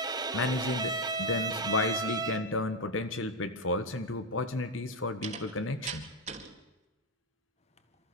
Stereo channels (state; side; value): normal; both; correlation 0.06